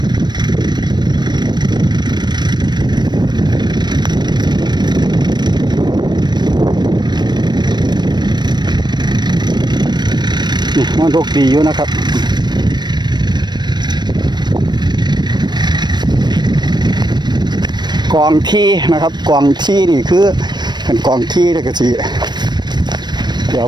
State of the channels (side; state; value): left; late; 0.21 ms